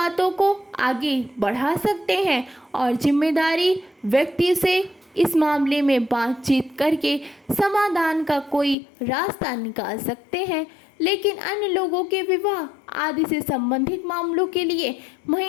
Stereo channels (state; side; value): drops out; right; at 8.8 s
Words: को आगे बढ़ा सकते हैं और जिम्मेदारी व्यक्ति से इस मामले में बातचीत करके समाधान का कोई रास्ता निकाल सकते हैं। लेकिन अन्य लोगों के विवाह आदि से संबंधित मामलों के लिए